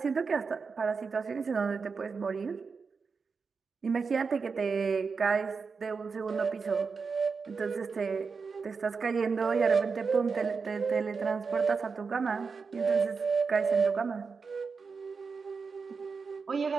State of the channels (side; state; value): left; quieter; 5.1 dB